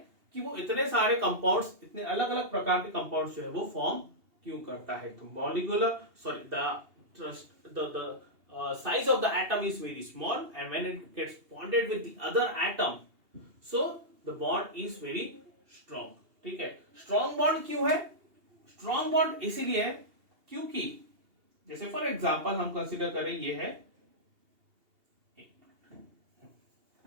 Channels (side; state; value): left; late; 2.8 ms